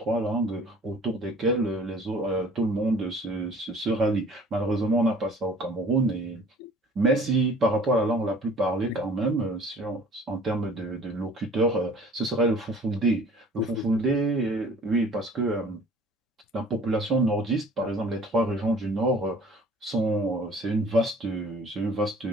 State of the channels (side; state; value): both; normal; correlation 0.50